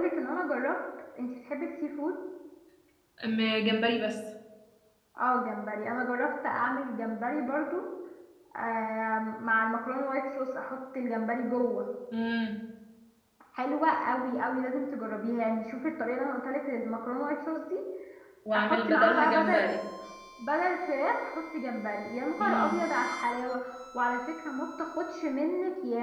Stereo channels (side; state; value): both; identical; correlation 1.00